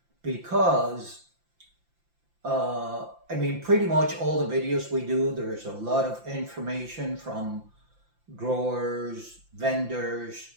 because pretty much all the videos we do, there's a lot of information from growers, vendors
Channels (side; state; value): left; late; 5.8 ms